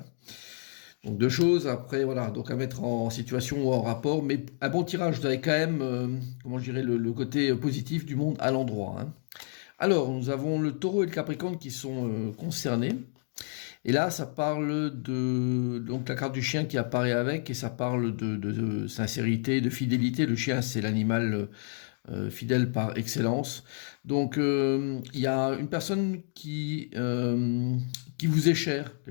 Donc deux choses, après voilà, donc à mettre en situation ou en rapport, mais un bon tirage, vous avez quand même, comment je dirais, le côté positif du monde à l'endroit, hein. Alors, nous avons le taureau et le capricorne qui sont concernés. Et là, ça parle de donc la carte du chien qui apparaît avec, et ça parle de sincérité, de fidélité. Le chien, c'est l'animal fidèle par excellence. Donc, il y a une personne qui vous est chère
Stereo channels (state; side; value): silent; right; 58 dB below the other